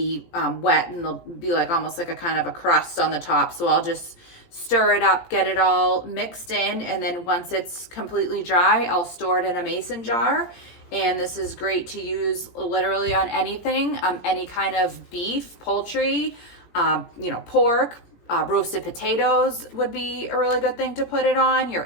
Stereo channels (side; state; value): right; late; 18 ms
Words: wet, and there'll be like almost like a kind of a crust on the top. So I'll just stir it up, get it all mixed in, and then once it's completely dry, I'll store it in a mason jar. And this is great to use literally on anything, any kind of beef, poultry, pork, roasted potatoes would be a really good thing to put it on,